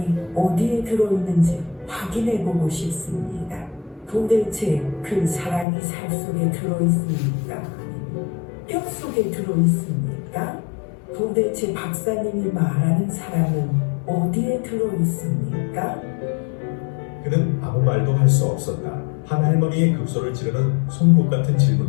어디에 들어있는지 확인해보고 싶습니다. 도대체 그 사랑이 살 속에 들어있습니까? 아니면 뼈 속에 들어있습니까? 도대체 박사님이 말하는 사랑은 어디에 들어있습니까? 그는 아무 말도 할 수 없었다. 한 할머니의 급소를 찌르는 송곳 같은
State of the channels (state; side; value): drops out; right; at 5.7 s